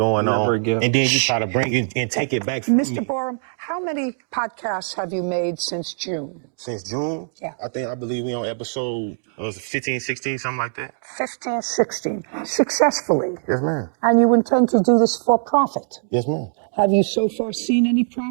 on, and then you try to bring it and take it back from me. Mr. Borum, how many podcasts have you made since June? Since June? Yeah. I believe we on episode 15, 16, something like that. 15, 16. Successfully. Yes, ma'am. And you intend to do this for profit? Yes, ma'am. Have you so far seen any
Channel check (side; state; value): left; silent; digital silence